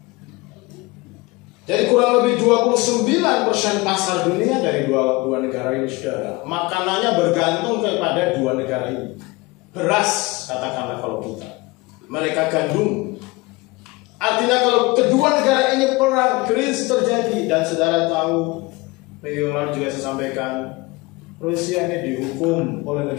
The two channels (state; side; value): quieter; right; 23.4 dB